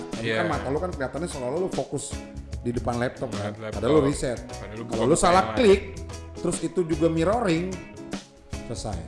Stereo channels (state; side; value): identical; both; correlation 1.00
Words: Tapi Iya. kan mata lu kan kelihatannya seolah lu fokus di depan laptop kan. Laptop. Padahal lu riset. Padahal lu Kalau buka lu salah kamera. klik, terus itu juga mirroring,